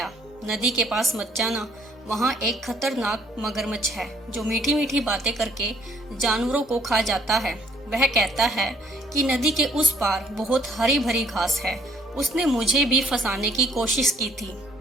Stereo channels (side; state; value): both; normal; correlation 0.65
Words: नदी के पास मत जाना, वहाँ एक खतरनाक मगरमच्छ है जो मीठी मीठी बातें करके जानवरों को खा जाता है। वह कहता है कि नदी के उस पार बहुत हरी भरी घास है। उसने मुझे भी फंसाने की कोशिश की थी।